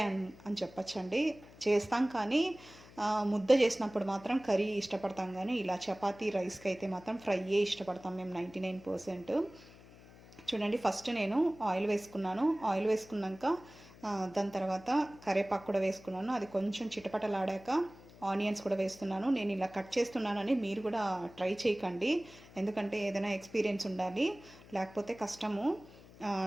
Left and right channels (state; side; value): noise; left; hum, 21 dB below the sound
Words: అని చెప్పచ్చండి. చేస్తాం కానీ ముద్ద చేసినప్పుడు మాత్రం కర్రీ ఇష్టపడతాం, కానీ ఇలా చపాతీ రైస్కి అయితే మాత్రం ఫ్రైయే ఇష్టపడతాం మేము 99%. చూడండి, ఫస్ట్ నేను ఆయిల్ వేసుకున్నాను. ఆయిల్ వేసుకున్నాక దాని తర్వాత కరివేపాకు కూడా వేసుకున్నాను. అది కొంచెం చిటపటలాడాక ఆనియన్స్ కూడా వేస్తున్నాను. నేను ఇలా కట్ చేస్తున్నానని మీరు కూడా ట్రై చేయకండి, ఎందుకంటే ఏదైనా ఎక్స్పీరియన్స్ ఉండాలి, లేకపోతే కష్టము,